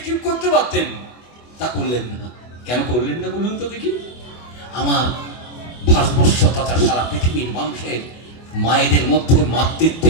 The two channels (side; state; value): right; late; 24 ms